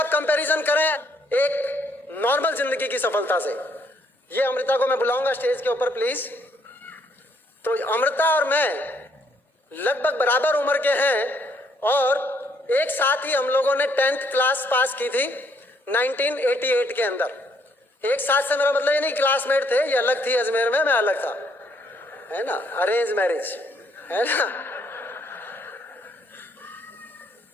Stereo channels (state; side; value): normal; both; correlation 0.69